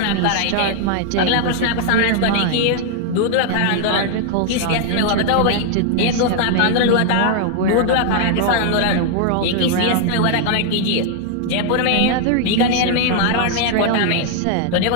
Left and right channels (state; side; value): different; both; correlation 0.00